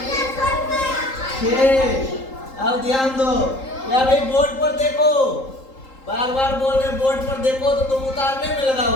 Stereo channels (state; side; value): late; right; 3.8 ms